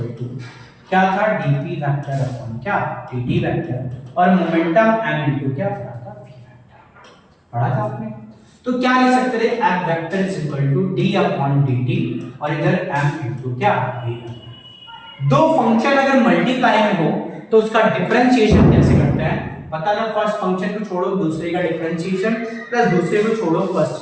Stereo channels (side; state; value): both; identical; correlation 1.00